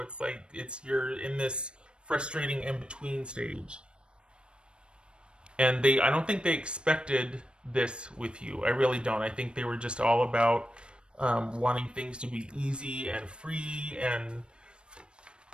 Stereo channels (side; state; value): left; late; 0.055 ms